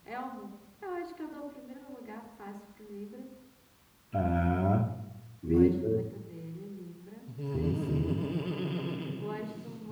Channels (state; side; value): identical; both; correlation 1.00